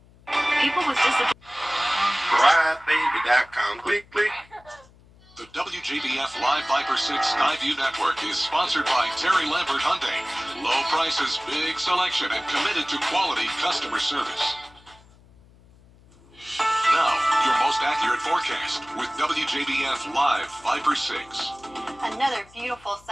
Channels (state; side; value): noise; left; hum, 27 dB below the sound